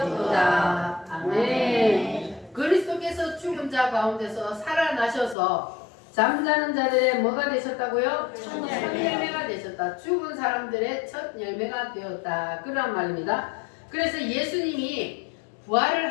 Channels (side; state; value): right; drops out; at 5.4 s